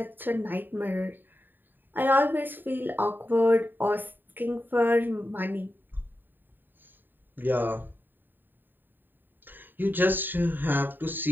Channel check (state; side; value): late; left; 0.093 ms